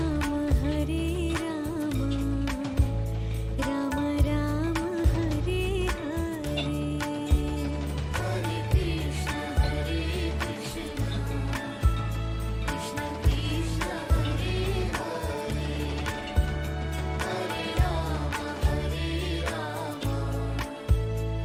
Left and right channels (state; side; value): identical; both; correlation 1.00